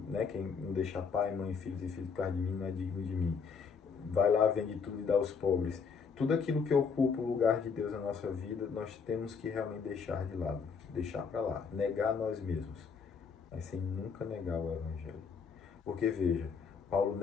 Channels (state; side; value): quieter; right; 5.7 dB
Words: quem não deixa pai, mãe, filhos e filhos por causa de mim não é digno de mim. Vai lá, vende tudo e dá aos pobres. Tudo aquilo que ocupa o lugar de Deus na nossa vida, nós temos que realmente deixar de lado, deixar para lá, negar nós mesmos, mas sem nunca negar o Evangelho. Porque veja, Paulo